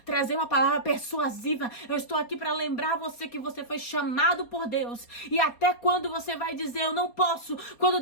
trazer uma palavra persuasiva. Eu estou aqui para lembrar você que você foi chamado por Deus. E até quando você vai dizer: eu não posso, quando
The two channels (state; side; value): late; right; 4.3 ms